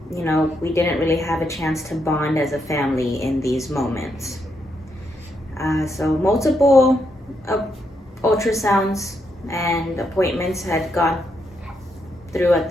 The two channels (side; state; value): both; normal; correlation 0.79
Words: we didn't really have a chance to bond as a family in these moments. So multiple ultrasounds and appointments had gone through at